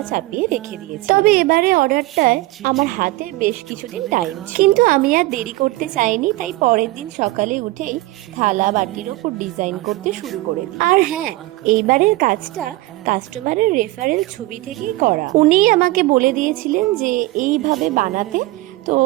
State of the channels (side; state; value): left; quieter; 19.2 dB